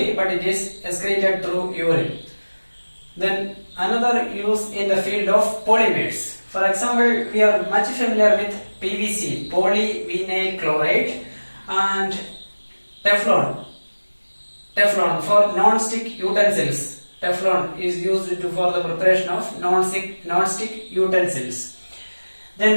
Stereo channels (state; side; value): inverted; both; correlation -1.00